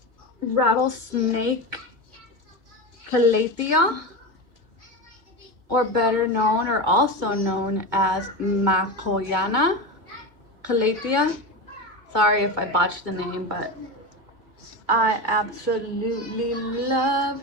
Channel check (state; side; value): late; left; 2.0 ms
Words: rattlesnake Calathea, or better known or also known as Makoyana Calathea. Sorry if I botched the name, but I absolutely love